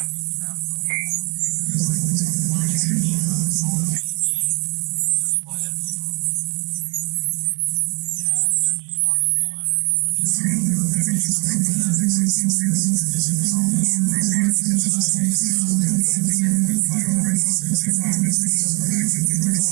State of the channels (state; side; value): quieter; left; 33.4 dB